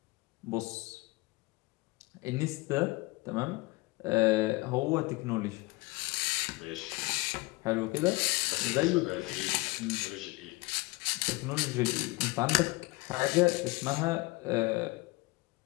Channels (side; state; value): right; quieter; 23.5 dB